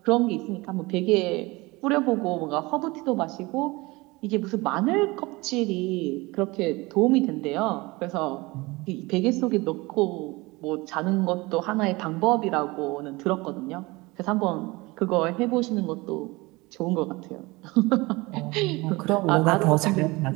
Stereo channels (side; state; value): left; quieter; 22.9 dB